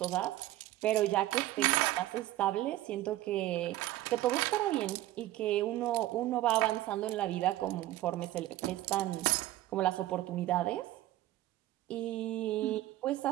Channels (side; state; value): left; quieter; 15.4 dB